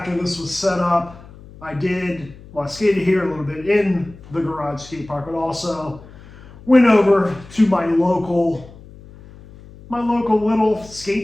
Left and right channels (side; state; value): left; noise; hum, 20 dB below the sound